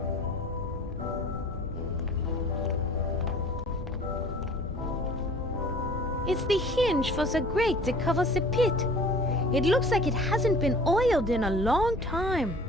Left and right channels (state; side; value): normal; both; correlation 0.47